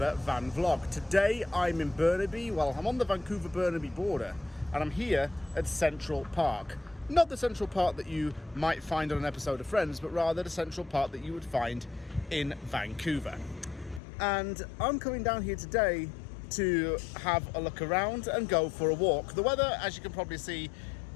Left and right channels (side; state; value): right; drops out; at 14.0 s